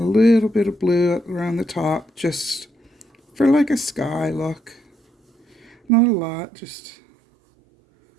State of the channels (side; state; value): left; drops out; at 5.8 s